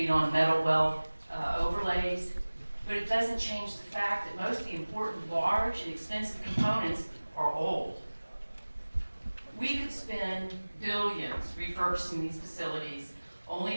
on metal well overlays, but it doesn't change the fact that most of the important, large, and expensive components are old. We could spend billions refurbishing these facilities only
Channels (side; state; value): both; inverted; correlation -1.00